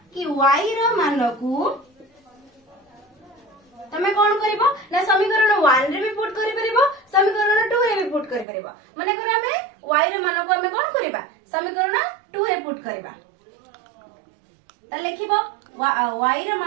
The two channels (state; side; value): drops out; left; at 8.5 s